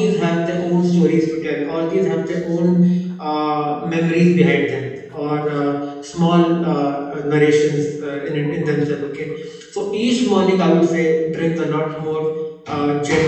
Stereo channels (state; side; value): identical; both; correlation 1.00